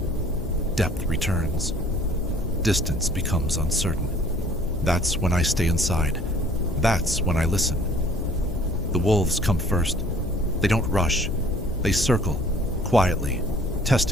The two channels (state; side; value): noise; left; hum, 8 dB below the sound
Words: Depth returns. Distance becomes uncertain. That's when I stay inside. That's when I listen. The wolves come first. They don't rush. They circle, quietly,